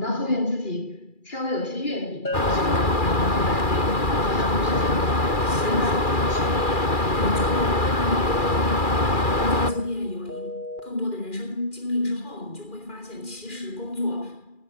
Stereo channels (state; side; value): late; right; 2.4 ms